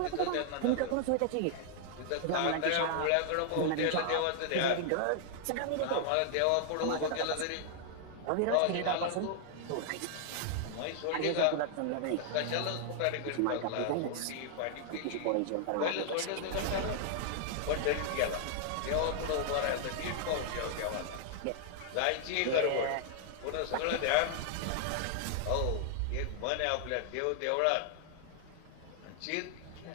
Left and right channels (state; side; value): different; both; correlation 0.00